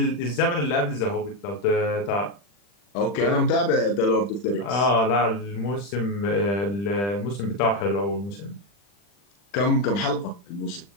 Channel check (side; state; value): right; late; 40 ms